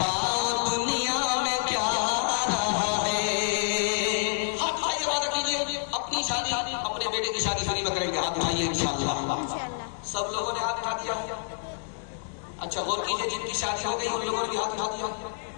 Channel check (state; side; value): silent; right; digital silence